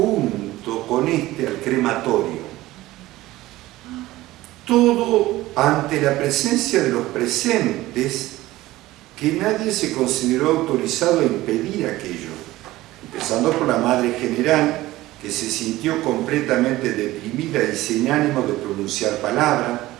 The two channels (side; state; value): left; quieter; 17.2 dB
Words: con este al crematorio. Todo ante la presencia de los presentes, que nadie se consideró autorizado a impedir aquello, empezando por la Madre General, que se sintió completamente deprimida y sin ánimo de pronunciar palabra,